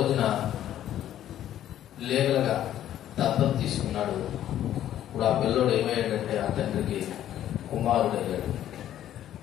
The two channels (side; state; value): right; quieter; 11.7 dB